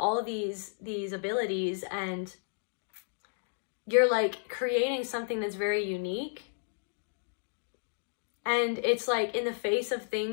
of these abilities, and you're like creating something that's very unique. And it's like, in the face of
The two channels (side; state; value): right; silent; digital silence